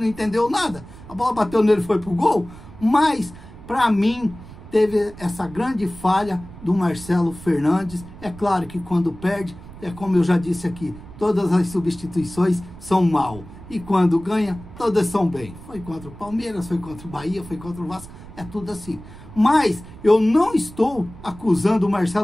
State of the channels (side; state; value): right; noise; rumble, 17 dB below the sound